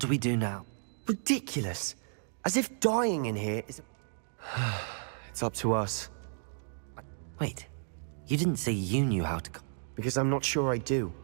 we do now? Ridiculous. As if dying in here is... It's up to us. Wait, you didn't say you knew how to... Because I'm not sure I do.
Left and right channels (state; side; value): silent; left; 56 dB below the other